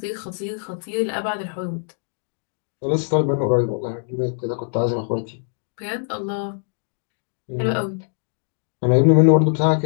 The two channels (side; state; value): right; silent; digital silence